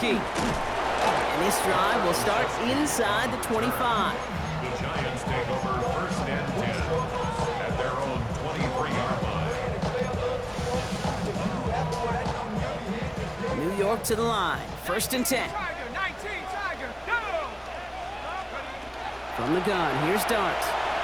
And this drive will start inside the 25. The Giants take over 1st and 10 at their own 23-yard line. New York to the line. 1st and 10. Tiger, 19, Tiger, go! From the gun, here's Dart.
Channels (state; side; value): identical; both; correlation 1.00